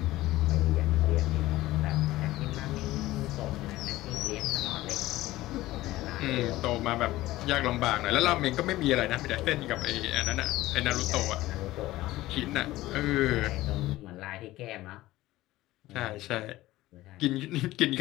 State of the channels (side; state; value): right; quieter; 17.0 dB